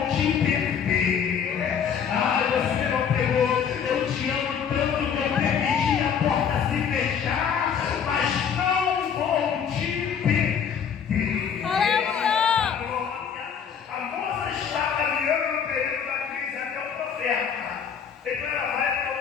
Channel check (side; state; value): right; quieter; 7.4 dB